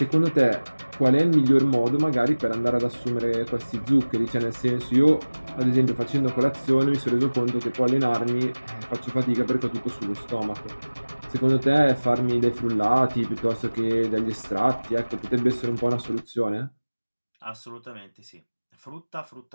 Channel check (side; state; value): both; inverted; correlation -1.00